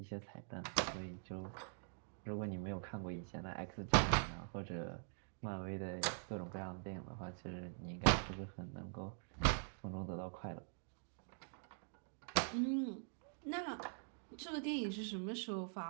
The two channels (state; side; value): silent; left; digital silence